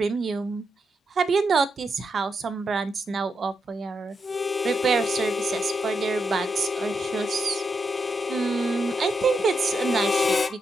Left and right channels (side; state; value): both; normal; correlation 0.83